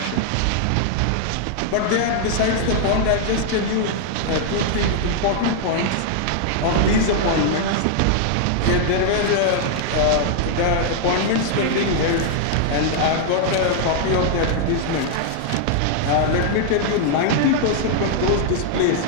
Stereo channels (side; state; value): both; different; correlation -0.01